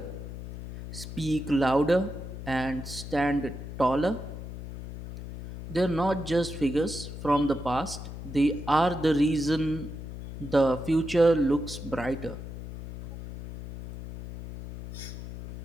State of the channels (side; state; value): left; noise; hum, 9 dB below the sound